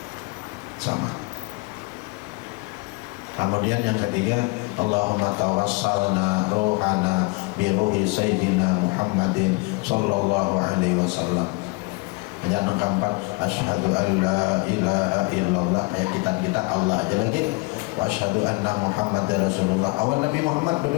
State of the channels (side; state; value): right; quieter; 27.1 dB